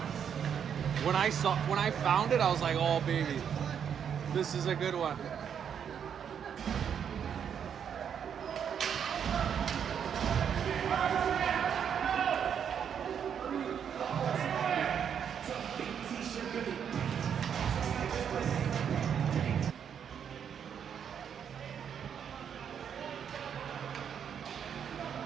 When I found it, I was like, oh baby, this is a good one.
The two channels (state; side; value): quieter; left; 8.0 dB